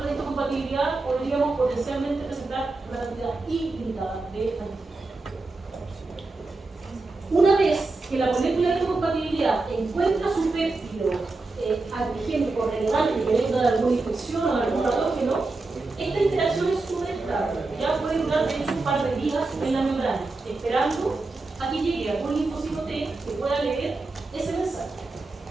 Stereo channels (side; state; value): left; quieter; 3.4 dB